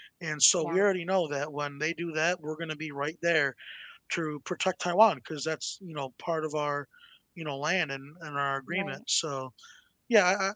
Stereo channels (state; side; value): identical; both; correlation 1.00